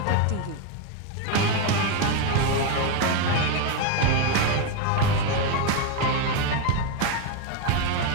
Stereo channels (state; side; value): different; both; correlation 0.02